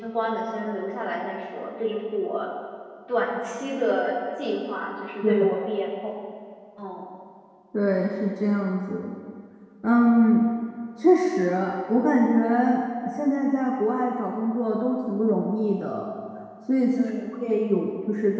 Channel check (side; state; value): both; identical; correlation 1.00